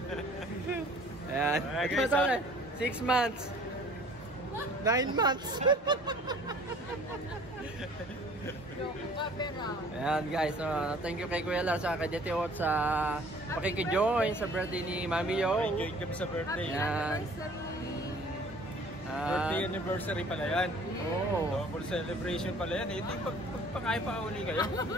Ayan. 6 months. 9 months. Ayan guys, thank you kay Kuya Lars sa kay Daddy Oats sa pakikijoin sa birthday ni Mami Yo. Enjoy kami sa birthday. Ayan. Birthday anniversary pala yan. Oh. Double celebration pala yan. Ito yung pagpakain pa uli kayo.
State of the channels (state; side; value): normal; both; correlation 0.52